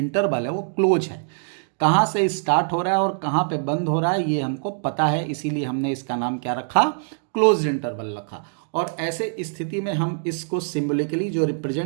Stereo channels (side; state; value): left; silent; digital silence